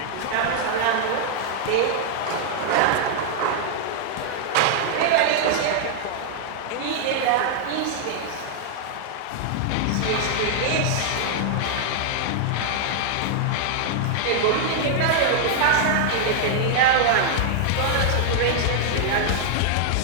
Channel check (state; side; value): different; both; correlation -0.01